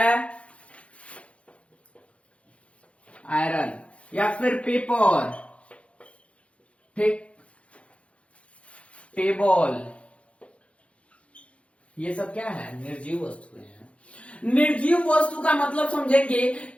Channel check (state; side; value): late; right; 0.062 ms